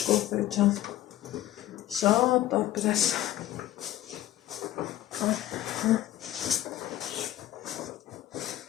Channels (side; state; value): right; quieter; 13.7 dB